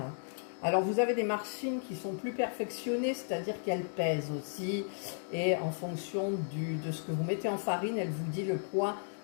Alors, vous avez des machines qui sont plus perfectionnées, c'est-à-dire qu'elles pèsent aussi. Et en fonction de ce que vous mettez en farine, elle vous dit le poids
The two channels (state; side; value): silent; right; digital silence